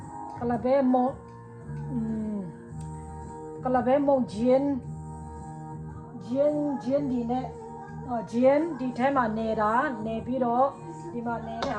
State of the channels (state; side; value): identical; both; correlation 1.00